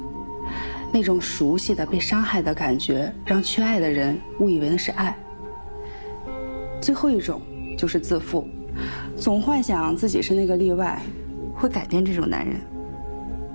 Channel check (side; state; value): both; inverted; correlation -1.00